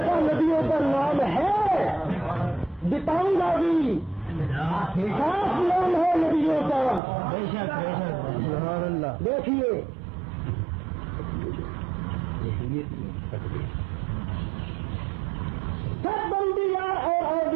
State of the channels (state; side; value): drops out; left; at 7.0 s